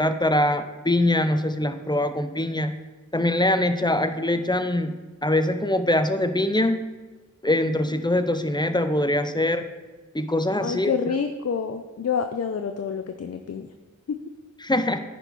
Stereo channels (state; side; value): normal; both; correlation 0.55